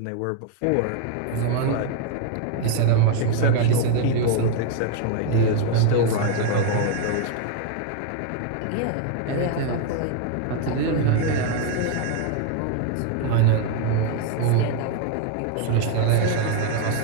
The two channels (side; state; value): both; different; correlation 0.00